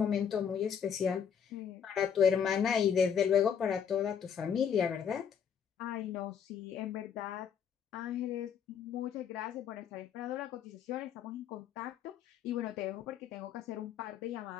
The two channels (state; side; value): quieter; right; 7.8 dB